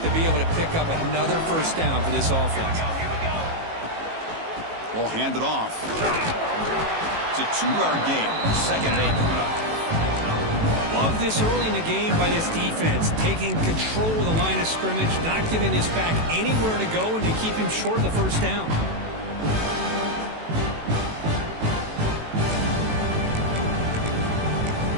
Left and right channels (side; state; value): left; late; 18 ms